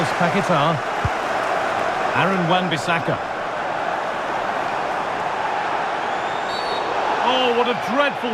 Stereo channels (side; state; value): both; identical; correlation 1.00